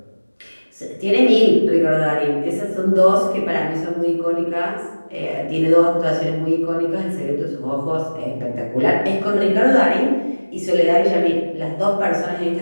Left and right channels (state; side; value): inverted; both; correlation -1.00